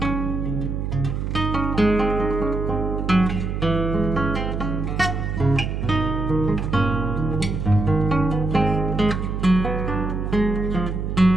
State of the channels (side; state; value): right; noise; hum, 3 dB below the sound